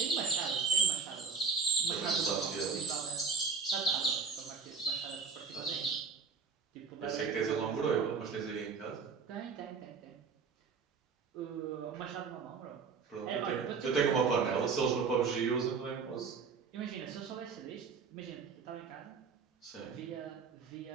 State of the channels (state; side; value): quieter; left; 5.4 dB